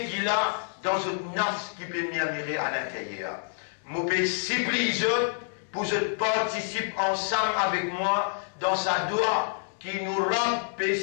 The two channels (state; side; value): silent; right; 59 dB below the other